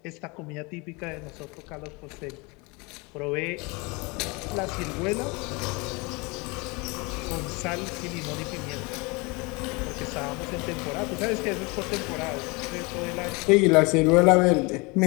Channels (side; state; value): right; quieter; 27.3 dB